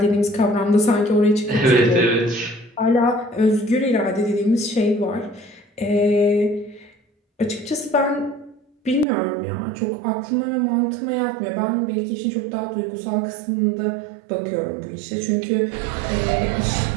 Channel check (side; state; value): left; drops out; at 9.1 s